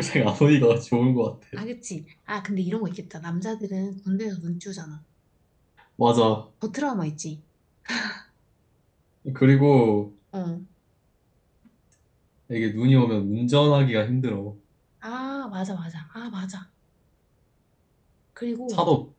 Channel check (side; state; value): both; identical; correlation 1.00